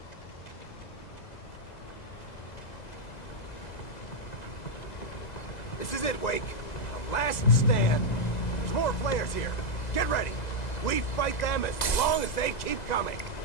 This is it, Wake. The last stand. There's more flares here. Get ready. We fight them as long as they keep coming.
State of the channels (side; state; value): right; late; 2.0 ms